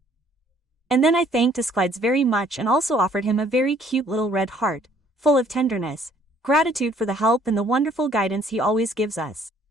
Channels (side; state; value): both; normal; correlation 0.61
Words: And then I thanked Asclepiades very much and also offered him a very cute little red heart, full of tenderness, gratitude for the help and the wonderful guidance he always gives us.